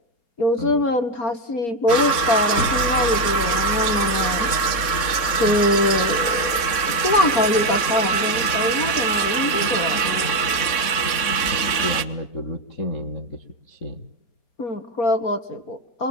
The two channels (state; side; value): late; right; 4.3 ms